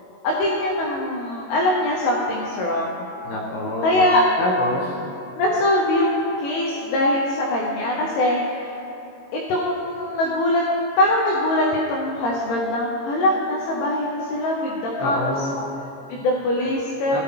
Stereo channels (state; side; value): late; right; 22 ms